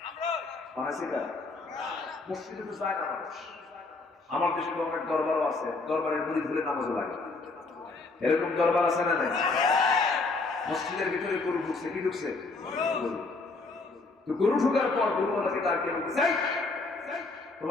বানাইছে কারা? মসজিদে তো যায় না মানুষ। আমার দেশে তো অনেক দরবারও আছে, দরবারের মুড়ি ভুলে নামাজও লাগে। এরকম দরবার আছে না নাই? মসজিদের ভিতরে গরু ঢুকছে, কি ঢুকছে? তো গরু ঢুকার পর গরুওয়ালাকে ডাক দিয়ে বলতে চাই,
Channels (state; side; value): quieter; right; 3.6 dB